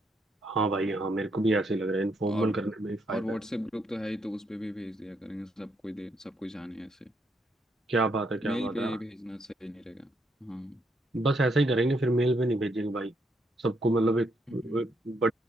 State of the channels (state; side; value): normal; both; correlation 0.76